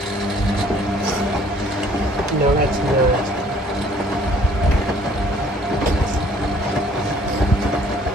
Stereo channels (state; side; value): normal; both; correlation 0.58